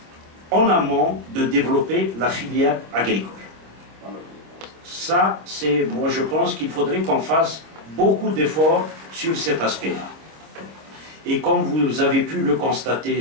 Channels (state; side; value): late; left; 26 ms